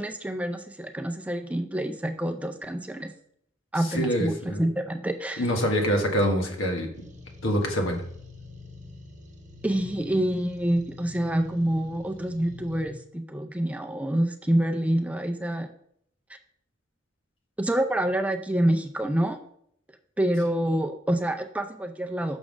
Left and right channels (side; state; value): both; normal; correlation 0.80